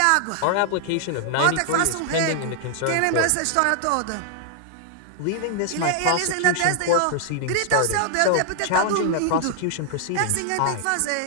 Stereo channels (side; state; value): both; different; correlation 0.00